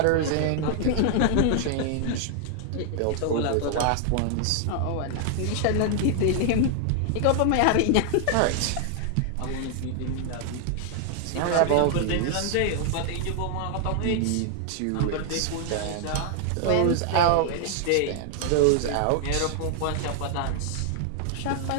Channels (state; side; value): different; both; correlation 0.00